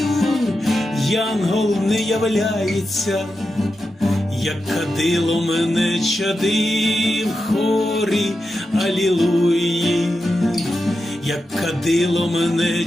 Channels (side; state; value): both; normal; correlation 0.89